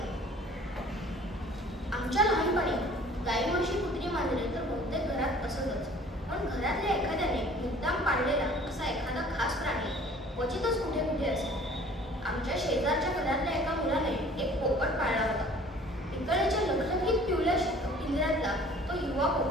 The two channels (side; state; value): both; normal; correlation 0.51